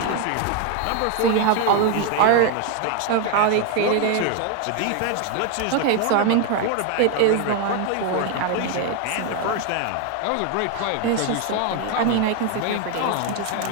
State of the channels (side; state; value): both; different; correlation 0.01